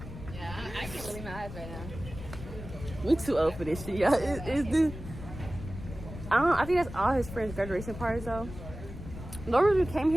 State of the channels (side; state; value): left; noise; rumble, 11 dB below the sound